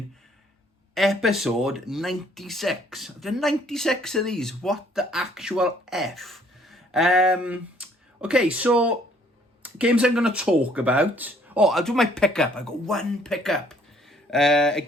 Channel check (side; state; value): both; normal; correlation 0.61